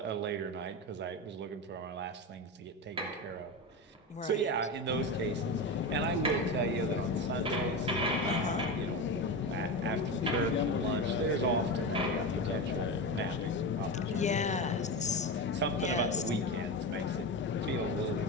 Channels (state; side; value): normal; both; correlation 0.20